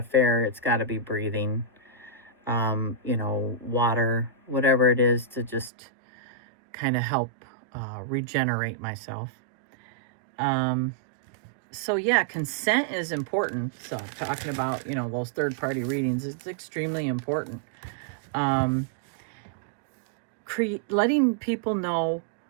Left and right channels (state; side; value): drops out; left; at 5.7 s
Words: fair, it's got to be breathing. Water, whatever it is, to just kind of help regenerate myself. So yeah, consent is important. So talking about, those third-party readings, it's extremely important. Letting people know,